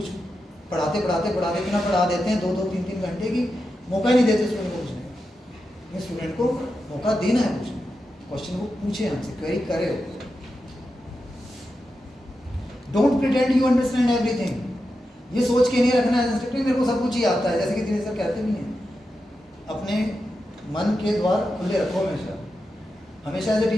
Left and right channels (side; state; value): both; normal; correlation 0.89